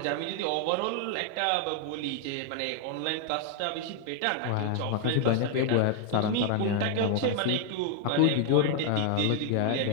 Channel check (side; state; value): both; different; correlation 0.00